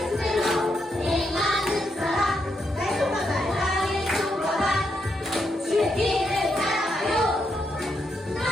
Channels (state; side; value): normal; both; correlation 0.81